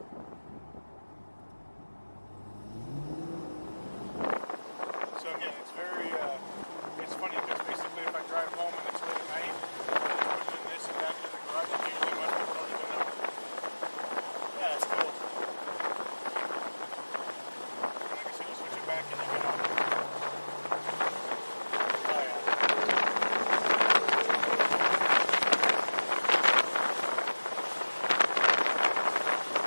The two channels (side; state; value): both; inverted; correlation -1.00